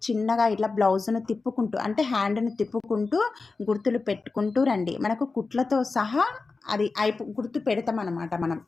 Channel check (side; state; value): right; quieter; 4.1 dB